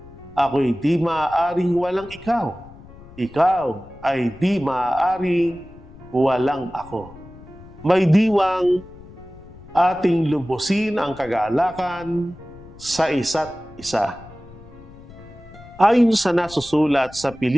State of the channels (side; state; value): left; noise; rumble, 20 dB below the sound